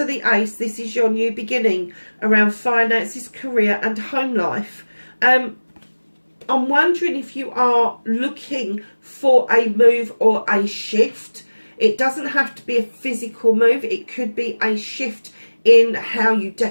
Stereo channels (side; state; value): both; inverted; correlation -1.00